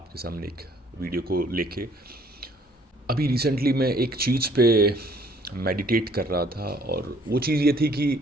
सामने एक वीडियो को लेके। अभी रिसेंटली मैं एक चीज़ पे मेडिटेट कर रहा था, और वो चीज़ ये थी कि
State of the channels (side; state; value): both; normal; correlation 0.60